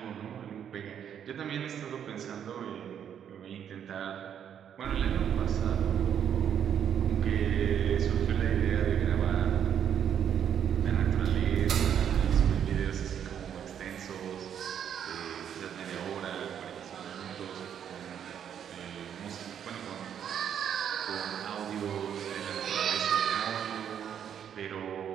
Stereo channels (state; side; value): quieter; left; 8.9 dB